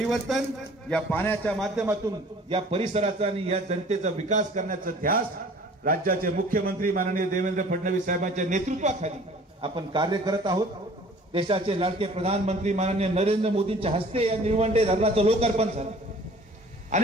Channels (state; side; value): normal; both; correlation 0.49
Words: या पाण्याच्या माध्यमातून या परिसराचा आणि या जनतेचा विकास करण्याचा ध्यास राज्याचे मुख्यमंत्री माननीय देवेंद्र फडणवीस साहेबांच्या नेतृत्वाखाली आपण कार्य करत आहोत. देशाचे लाडके प्रधानमंत्री माननीय नरेंद्र मोदींच्या हस्ते या निळवंडे धरणाचं लोकार्पण झालं